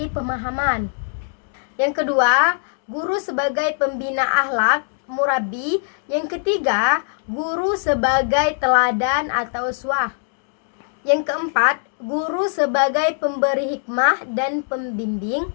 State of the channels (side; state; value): right; silent; digital silence